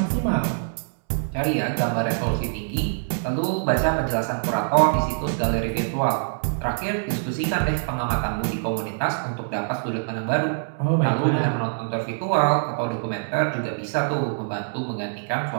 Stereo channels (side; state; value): left; silent; 62 dB below the other